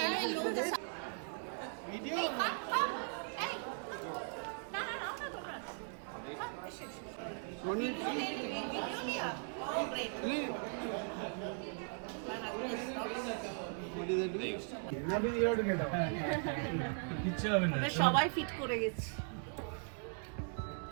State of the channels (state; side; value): silent; left; 52 dB below the other